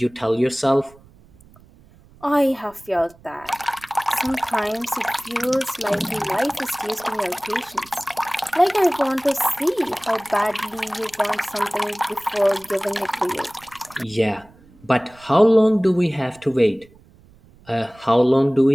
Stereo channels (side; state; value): right; noise; rumble, 27 dB below the sound